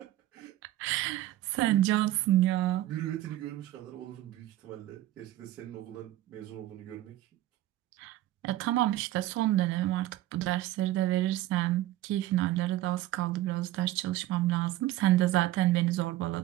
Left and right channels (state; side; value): quieter; left; 15.0 dB